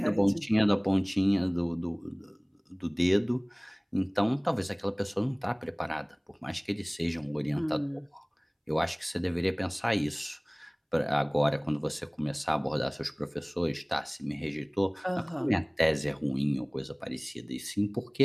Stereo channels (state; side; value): identical; both; correlation 1.00